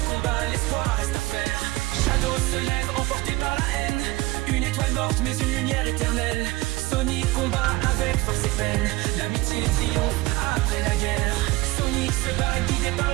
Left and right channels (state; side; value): quieter; left; 20.4 dB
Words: combat, l'espoir reste à faire. Shadow se lève, emporté par la haine. Une étoile morte, mais une lumière éternelle. Sonic combat avec force et peine. L'amitié triomphe après la guerre. Sonic se bat guidé par